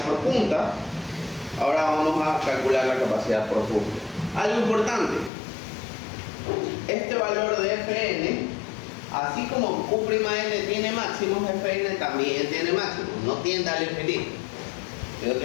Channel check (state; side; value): drops out; right; at 5.3 s